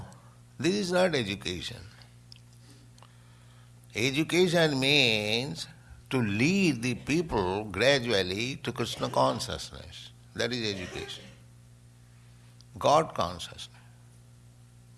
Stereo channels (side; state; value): both; identical; correlation 1.00